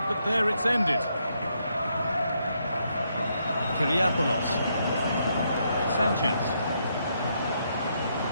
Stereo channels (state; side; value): inverted; both; correlation -0.77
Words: but there it's ended. Kyriapoulos. Sanchez.